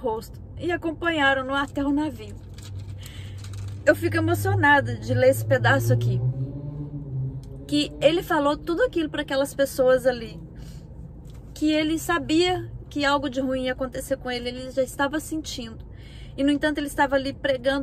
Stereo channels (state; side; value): identical; both; correlation 1.00